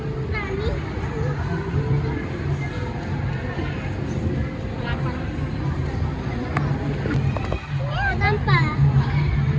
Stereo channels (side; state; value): both; identical; correlation 1.00